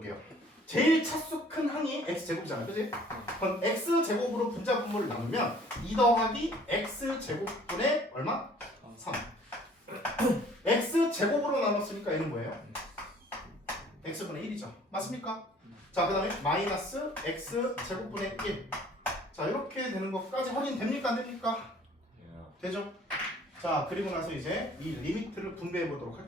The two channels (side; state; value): both; normal; correlation 0.54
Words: 제일 차수 큰 항이 x제곱이잖아요, 그치? 그럼 x제곱으로 분자 분모를 나누면 2 더하기 x제곱분의 얼마? 3. x제곱으로 나눴으니까 얘는 뭐예요? x분의 1이죠. 맞습니까? 자, 그 다음에 마이너스 x제곱분의 1. 자, 이렇게 되는 것까지 확인됩니까? 안 됩니까? 되죠? 자, 그리고 나서 이제 이 리미트를 분배해 보도록